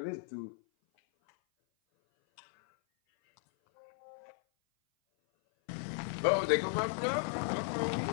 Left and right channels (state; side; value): silent; right; 54 dB below the other